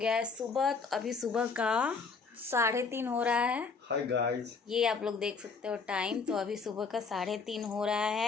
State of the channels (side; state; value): right; quieter; 4.8 dB